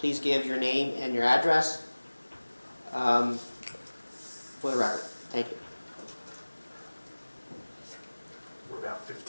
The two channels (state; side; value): inverted; both; correlation -1.00